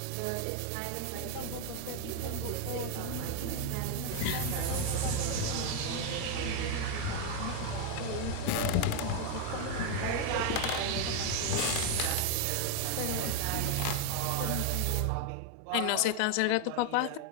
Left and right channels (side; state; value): both; different; correlation 0.01